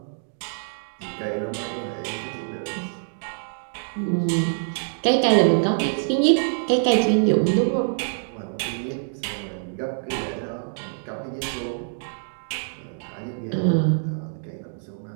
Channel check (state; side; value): silent; left; digital silence